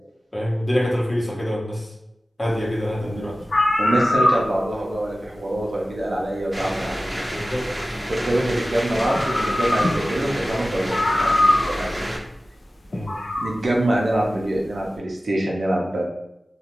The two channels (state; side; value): normal; both; correlation 0.96